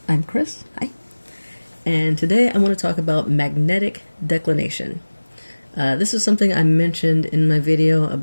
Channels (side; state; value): both; inverted; correlation -1.00